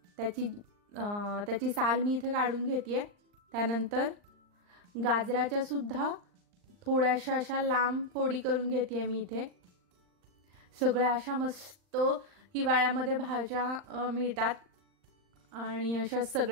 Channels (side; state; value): left; late; 39 ms